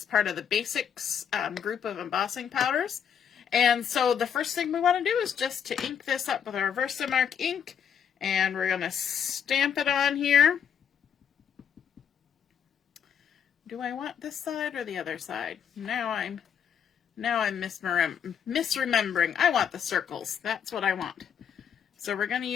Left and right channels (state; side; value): quieter; right; 8.1 dB